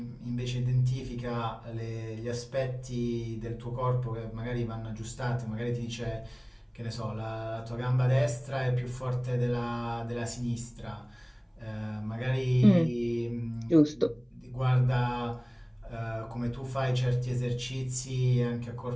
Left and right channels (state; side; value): identical; both; correlation 1.00